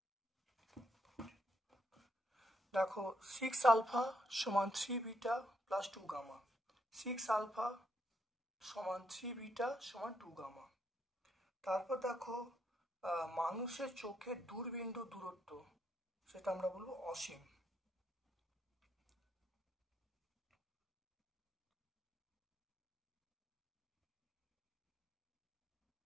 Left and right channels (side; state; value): both; normal; correlation 0.77